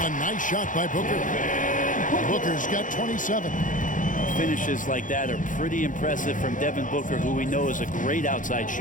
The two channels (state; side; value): late; right; 0.38 ms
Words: nice shot by Booker. Booker's got 27. Finishes like that are pretty impressive from Devin Booker, who we know is a great outside